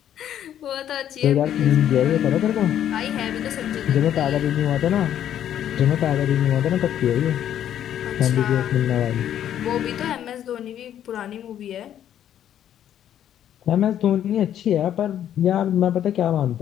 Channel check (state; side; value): quieter; right; 10.6 dB